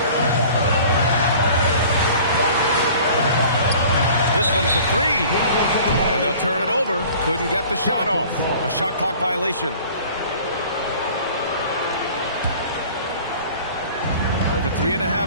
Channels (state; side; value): inverted; both; correlation -0.47